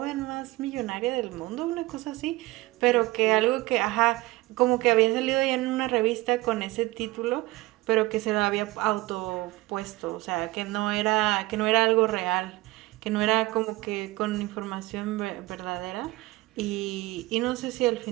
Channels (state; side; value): quieter; left; 19.7 dB